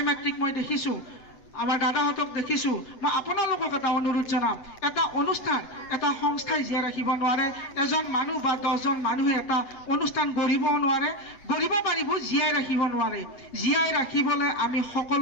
মাতৃক মই দেখিছোঁ আমাৰ দাদাহঁতক দেখিছোঁ মই আপোনালোকক এটা অনুৰোধ জনাম এটা অনুষ্ঠান এটা সংস্থাই জীয়াই ৰাখিব নোৱাৰে এজন মানুহ বা 10জন মানুহে এটা অনুষ্ঠান গঢ়িবও নোৱাৰে গঢ়িব পাৰিব জীয়াই ৰাখিব নোৱাৰে জীয়াই ৰাখিবলৈ আমি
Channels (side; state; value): right; late; 8.0 ms